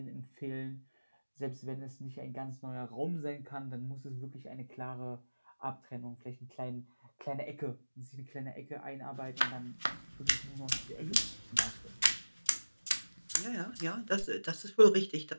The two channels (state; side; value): inverted; both; correlation -1.00